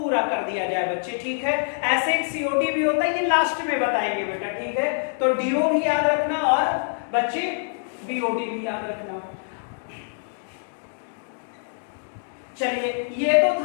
कर दिया जाए बच्चे, ठीक है। ऐसे एक सीओडी भी होता है, ये लास्ट में बताएंगे बेटा, ठीक है। तो डीओ भी याद रखना, और बच्चे बीओडी भी याद रखना। चलिए, ये तो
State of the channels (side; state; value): right; silent; digital silence